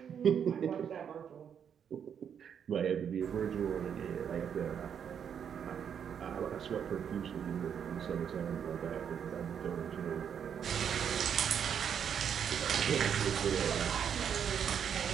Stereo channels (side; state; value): left; quieter; 8.0 dB